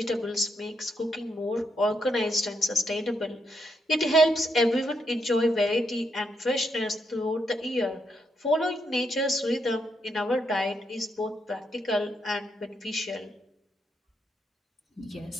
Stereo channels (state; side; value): normal; both; correlation 0.79